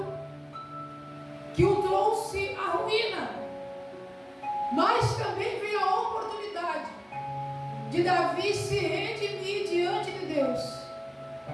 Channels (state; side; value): identical; both; correlation 1.00